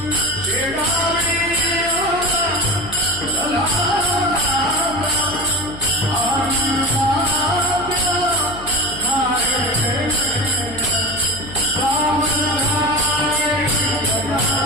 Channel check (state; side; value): noise; left; hum, 14 dB below the sound